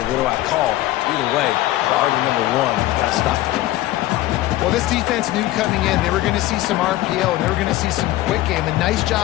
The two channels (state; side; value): quieter; right; 16.1 dB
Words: What do I call? Either way, priority number one, you got to stop the run. Well, this defense knew coming in they were going to see some RPO, and they were going to see some quick game. A nice